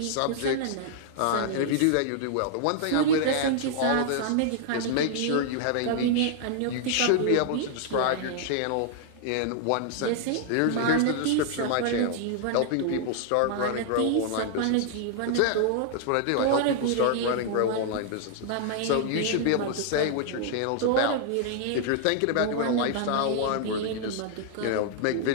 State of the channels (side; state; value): both; different; correlation -0.01